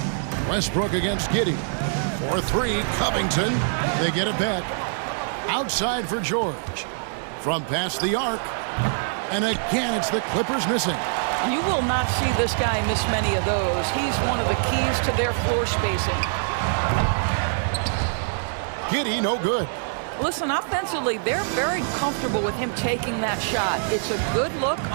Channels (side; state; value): left; silent; 60 dB below the other